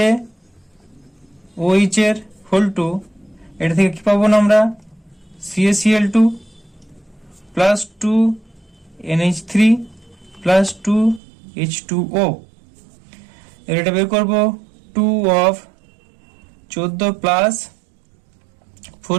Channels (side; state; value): left; drops out; at 11.2 s